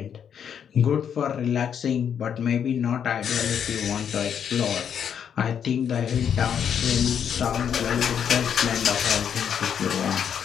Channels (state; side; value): quieter; right; 8.2 dB